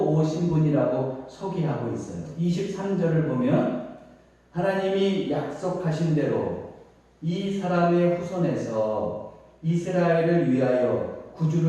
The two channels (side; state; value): both; identical; correlation 1.00